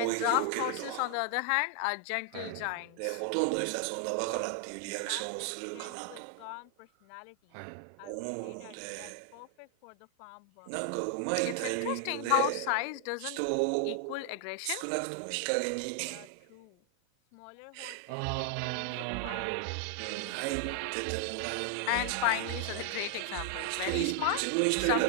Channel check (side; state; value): both; different; correlation 0.00